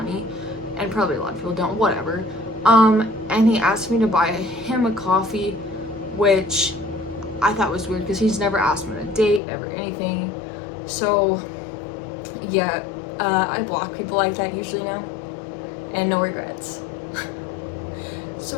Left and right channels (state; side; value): drops out; right; at 9.4 s